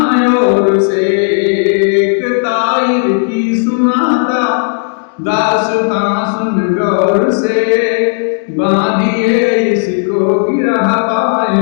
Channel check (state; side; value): silent; right; digital silence